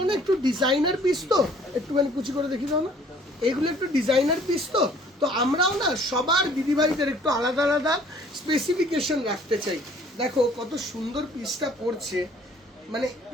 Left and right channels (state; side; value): normal; both; correlation 0.56